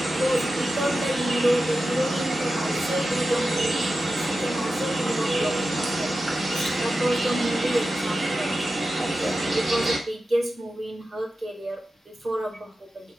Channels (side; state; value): both; normal; correlation 0.92